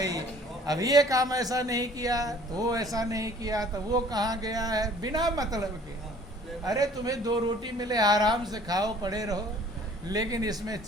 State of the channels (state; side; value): normal; both; correlation 0.53